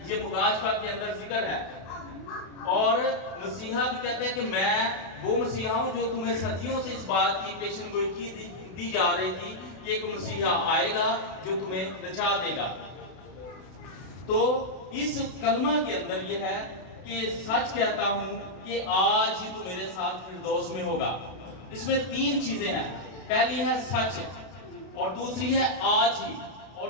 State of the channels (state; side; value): late; right; 31 ms